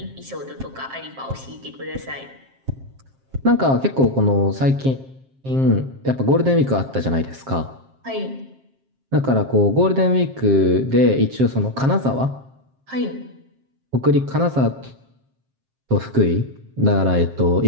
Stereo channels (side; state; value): left; late; 7.5 ms